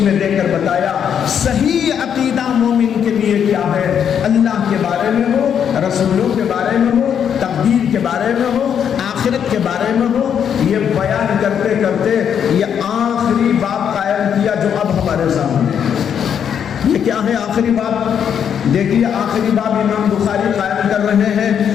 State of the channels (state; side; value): quieter; right; 8.3 dB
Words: میں دے کر بتایا صحیح عقیدہ مومن کے لیے کیا ہے، اللہ کے بارے میں ہو، رسولوں کے بارے میں ہو، تقدیر کے بارے میں ہو، آخرت کے بارے میں ہو۔ یہ بیان کرتے کرتے یہ آخری باب قائم کیا جو اب ہمارے سامنے ہے۔ یہ کیا ہے آخری باب؟ دیکھیے آخری باب امام بخاری قائم کر رہے ہیں،